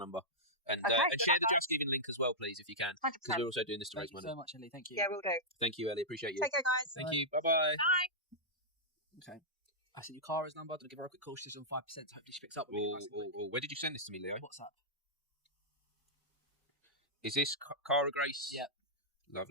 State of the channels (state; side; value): normal; both; correlation -0.10